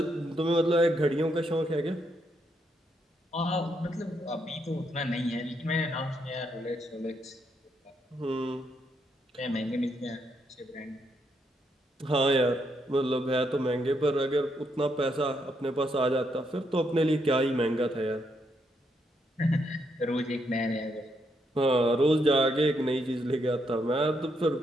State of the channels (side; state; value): both; normal; correlation 0.77